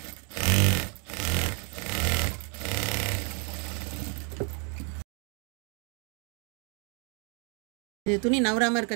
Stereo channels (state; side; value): quieter; left; 36.9 dB